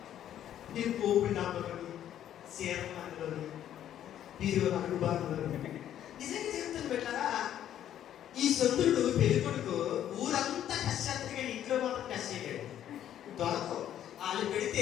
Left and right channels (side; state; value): right; quieter; 11.0 dB